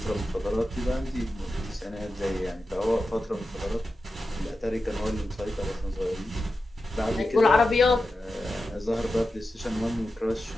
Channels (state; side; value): normal; both; correlation 0.91